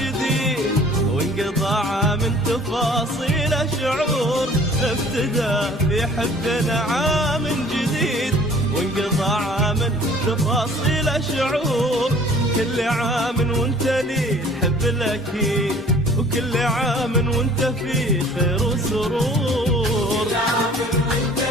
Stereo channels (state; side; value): normal; both; correlation 0.52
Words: وانقضى عام تفاصيل شعور. ابتدى في حبنا عام جديد، وانقضى عام تفاصيل شعور. كل عام وانت لي الحب الاكيد، وكل عام وانت في خير وسرور. كل عام وانت